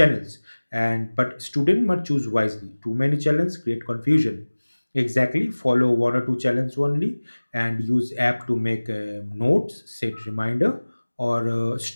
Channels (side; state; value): both; inverted; correlation -1.00